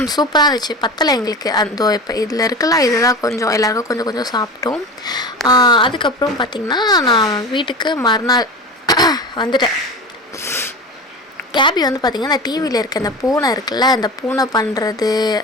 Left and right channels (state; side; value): normal; both; correlation 0.30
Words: சூப்பராக இருந்துச்சு. பத்தலை எங்களுக்கு. இப்போ இதில் இருக்கலாம், இதுதான் கொஞ்சம் எல்லாருக்கும் கொஞ்சம் கொஞ்சம் சாப்பிட்டோம். அதுக்கப்புறம் பார்த்திங்கன்னா நான் வீட்டுக்கு மறுநாள் வந்துட்டேன். கேபி வந்து பார்த்திங்கன்னா அந்த டிவியில் இருக்க அந்த பூனை இருக்குல்ல, அந்த பூனை பண்ணுறது,